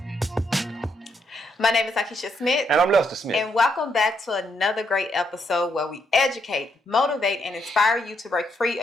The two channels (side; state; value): both; normal; correlation 0.76